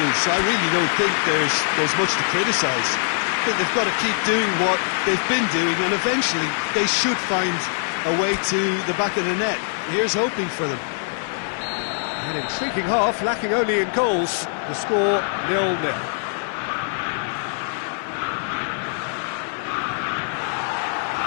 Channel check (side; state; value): right; silent; digital silence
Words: I really don't think there's much to criticise. I think they've got to keep doing what they've been doing, and eventually they should find a way to the back of the net. Here's hoping for them. An intriguing half, lacking only in goals. The score 0-0.